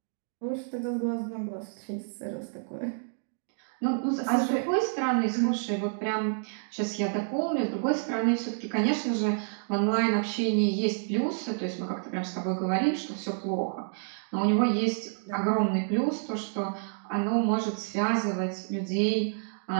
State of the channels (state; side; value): silent; left; digital silence